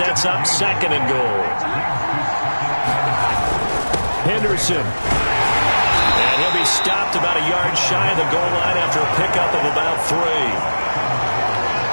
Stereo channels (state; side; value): inverted; both; correlation -1.00